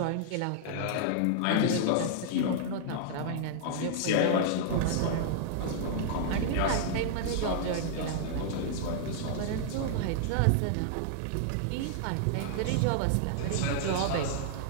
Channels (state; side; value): different; both; correlation -0.01